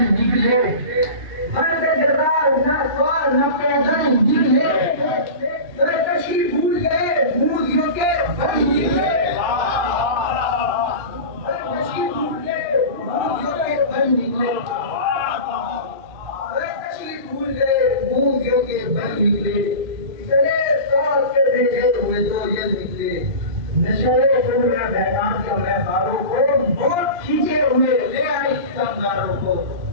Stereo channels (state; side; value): late; left; 2.4 ms